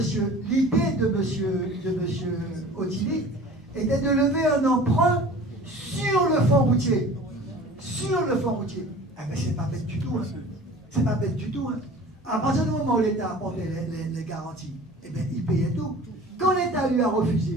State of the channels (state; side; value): normal; both; correlation 0.43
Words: Otili était de lever un emprunt sur le fonds routier. Sur le fonds routier. Ah ben c'est pas bête du tout. Hein. C'est pas bête du tout. Hein. À partir du moment où l'État apportait les garanties, eh bien il payait tout. Quand l'État lui a